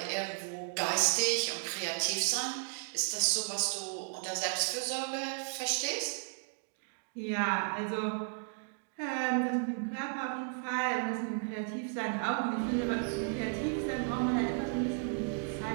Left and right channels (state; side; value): silent; left; 55 dB below the other